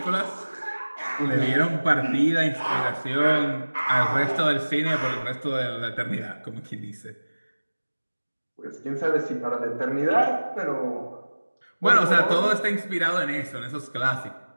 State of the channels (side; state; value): both; inverted; correlation -1.00